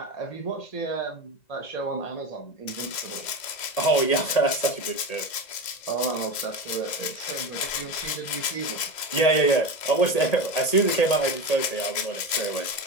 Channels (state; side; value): late; right; 2.0 ms